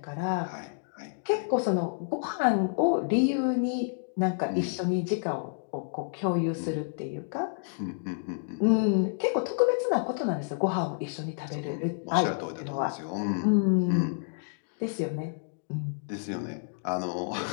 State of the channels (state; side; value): silent; right; digital silence